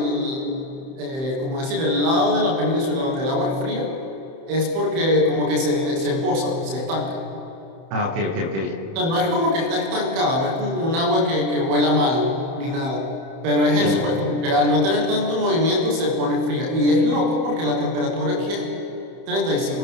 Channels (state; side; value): late; left; 30 ms